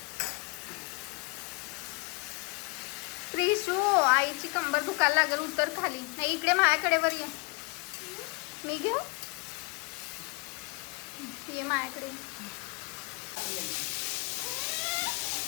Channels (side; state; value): right; quieter; 29.0 dB